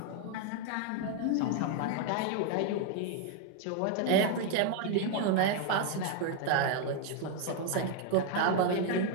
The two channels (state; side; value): different; both; correlation 0.00